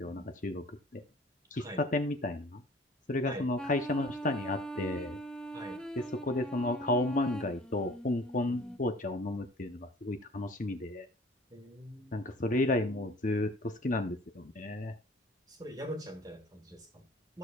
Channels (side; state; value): both; normal; correlation 0.49